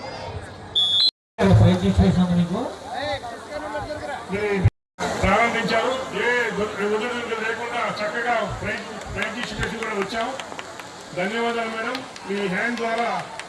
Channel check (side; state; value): both; identical; correlation 1.00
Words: ప్రారంభించారు. ఏ ఒడిదుడుకులు లేకుండా చక్కగా ప్రైజ్ డిస్ట్రిబ్యూషన్ కూడా వచ్చాం. ధన్యవాదాలు మేడం. మీ హ్యాండ్ ద్వారా